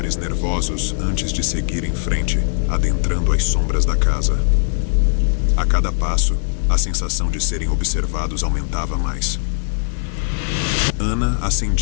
nervosos antes de seguir em frente, adentrando as sombras da casa. A cada passo, a sensação de serem observados aumentava mais. Ana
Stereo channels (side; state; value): right; silent; digital silence